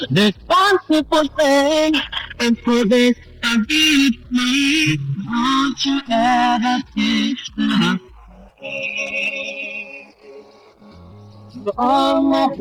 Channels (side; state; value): both; identical; correlation 1.00